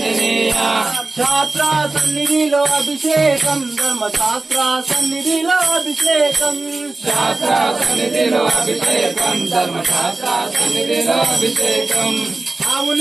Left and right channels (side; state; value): left; quieter; 3.2 dB